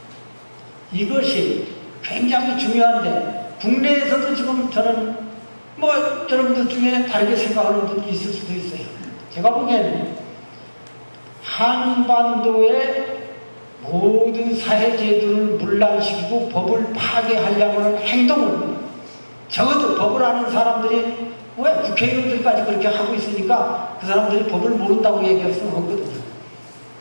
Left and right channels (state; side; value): inverted; both; correlation -1.00